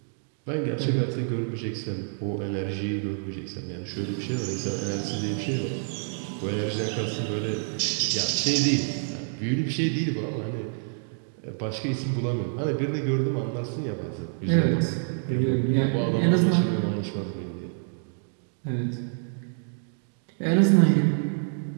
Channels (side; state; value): left; silent; digital silence